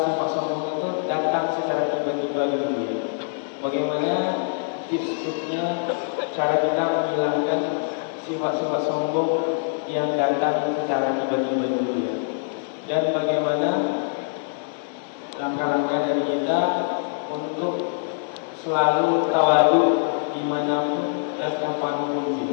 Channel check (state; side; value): silent; right; digital silence